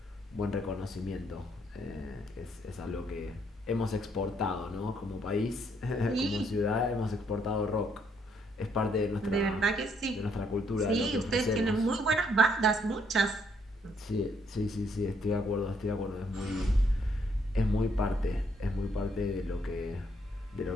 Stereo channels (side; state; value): both; normal; correlation 0.71